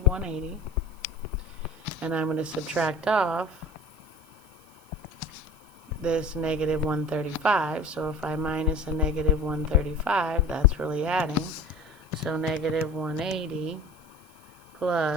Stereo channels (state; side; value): noise; right; hiss, 28 dB below the sound